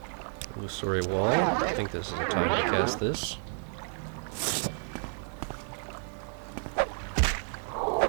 Illusory wall. I think this is the time to cast this.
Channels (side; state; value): left; silent; 57 dB below the other